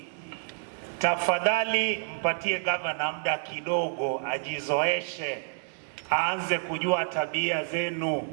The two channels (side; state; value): left; silent; digital silence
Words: tafadhali mpatie governor muda kidogo ajizoeshe, aanze kujua tabia zenu,